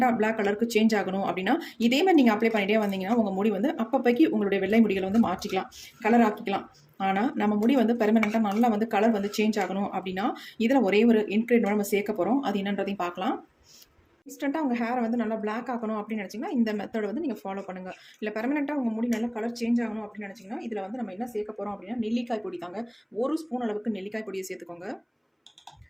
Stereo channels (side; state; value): both; identical; correlation 1.00